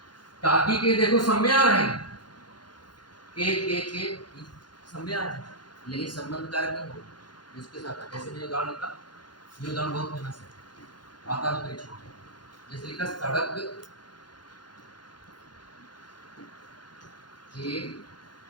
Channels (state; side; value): late; right; 0.71 ms